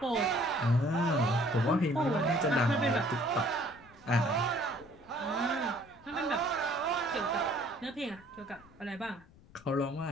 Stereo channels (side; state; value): left; noise; rumble, 25 dB below the sound